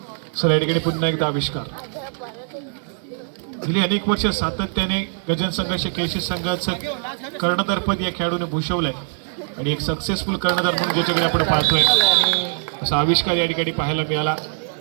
चला, या ठिकाणी पुन्हा एकदा आविष्कार. गेली अनेक वर्ष सातत्याने गजन संघाचे केशी संघाचं कर्णधारपद या खेळाडूने भूषवलंय आणि एक सक्सेसफुल कर्णधार म्हणून ज्याच्याकडे आपण पाहतोय असा आविष्कार या ठिकाणी पाहायला मिळाला.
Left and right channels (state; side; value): silent; left; 61 dB below the other